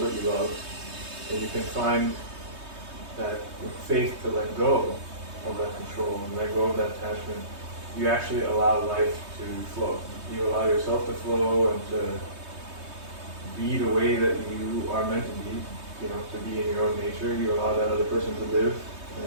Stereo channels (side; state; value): left; late; 3.2 ms